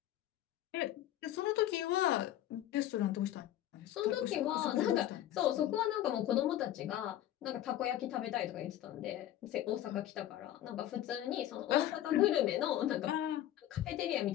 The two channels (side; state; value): right; quieter; 12.6 dB